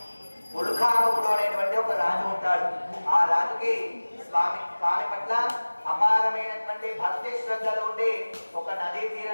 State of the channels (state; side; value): inverted; both; correlation -1.00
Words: ఉల్కాముడు అనేటువంటి ఒక రాజు ఉంటాడు. ఆ రాజుకి స్వామి పట్ల అపారమైనటువంటి భక్తి శ్రద్ధలు ఉండి ఒక నదీ